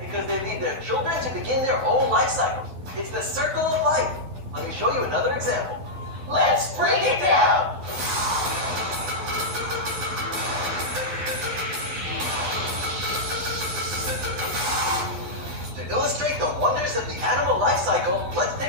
because they leave their children to begin their own life cycle. It's the circle of life. Let me show you another example. Let's break it down. To illustrate the wonders of the animal life cycle, let's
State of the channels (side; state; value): left; late; 12 ms